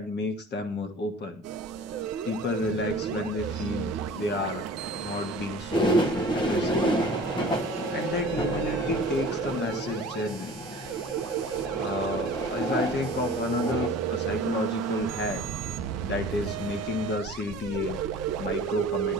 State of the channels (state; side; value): normal; both; correlation 0.43